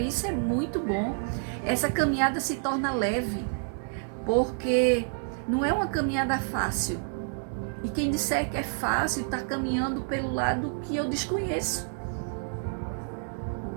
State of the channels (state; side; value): silent; left; digital silence